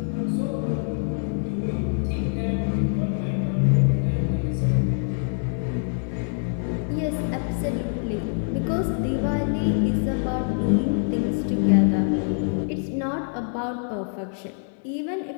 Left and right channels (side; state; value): right; silent; 62 dB below the other